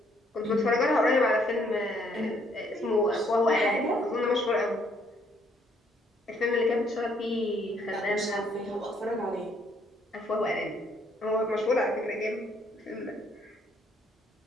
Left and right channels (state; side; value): normal; both; correlation 0.67